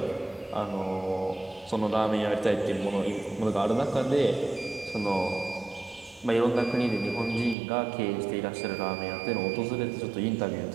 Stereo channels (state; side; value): drops out; left; at 7.6 s